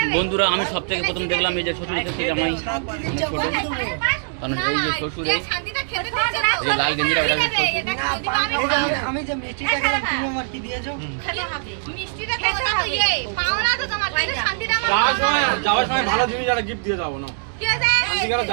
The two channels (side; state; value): left; silent; digital silence